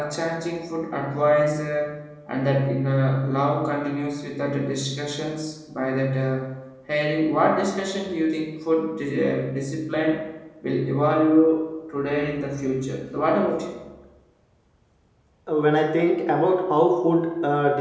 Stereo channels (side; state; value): both; identical; correlation 1.00